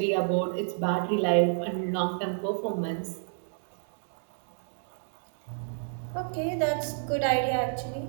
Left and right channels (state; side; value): silent; left; 58 dB below the other